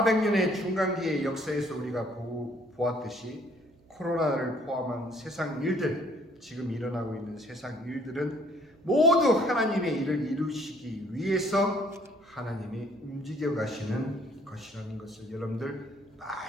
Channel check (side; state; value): right; noise; hum, 29 dB below the sound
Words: 중간기의 역사에서 우리가 보았듯이 코로나를 포함한 세상 일들, 지금 일어나고 있는 세상 일들은 모두 하나님의 일을 이루시기 위해서 하나님이 움직여 가시는 것이라는 것을 여러분들